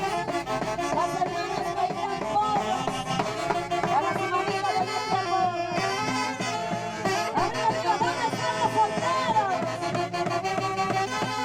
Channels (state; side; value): identical; both; correlation 1.00